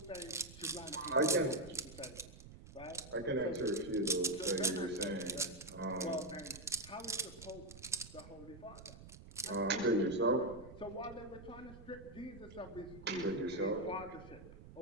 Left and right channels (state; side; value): noise; right; rumble, 16 dB below the sound